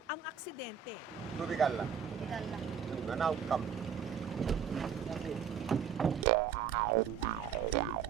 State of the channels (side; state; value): left; quieter; 7.6 dB